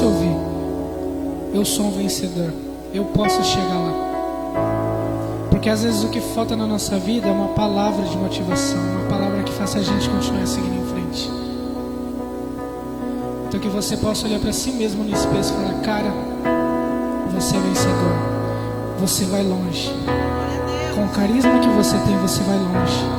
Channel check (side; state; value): both; identical; correlation 1.00